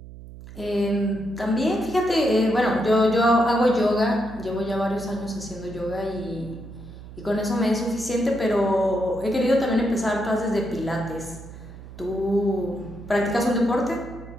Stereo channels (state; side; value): noise; right; hum, 15 dB below the sound